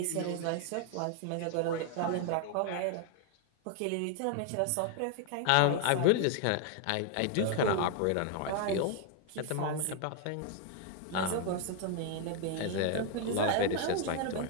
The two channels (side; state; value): both; different; correlation 0.01